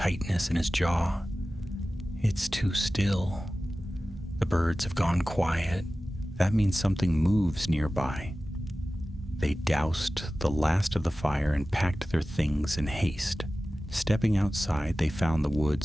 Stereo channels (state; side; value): normal; both; correlation 0.96